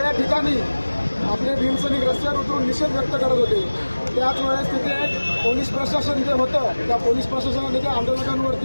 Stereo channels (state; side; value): inverted; both; correlation -1.00